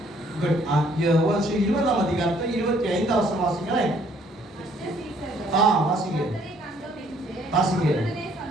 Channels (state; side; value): normal; both; correlation 0.63